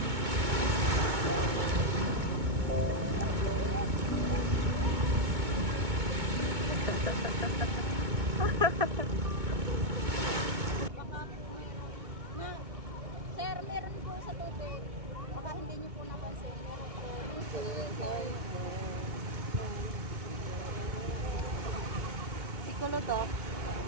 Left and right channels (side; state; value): left; late; 2.2 ms